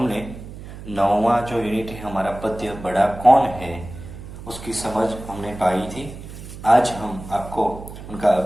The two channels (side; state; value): right; noise; hum, 13 dB below the sound